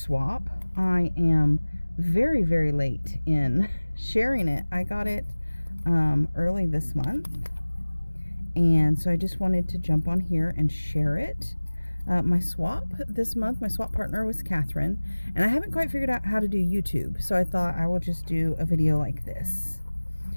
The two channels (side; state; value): both; inverted; correlation -1.00